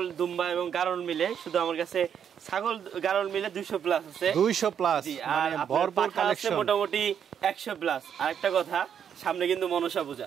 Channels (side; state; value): left; quieter; 8.3 dB